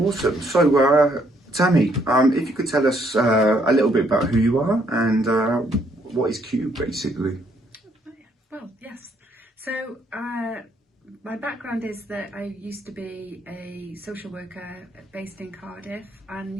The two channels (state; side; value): normal; both; correlation 0.70